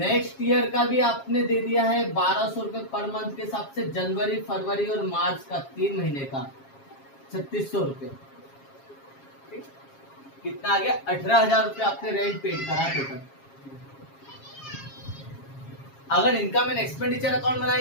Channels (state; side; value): late; right; 7.4 ms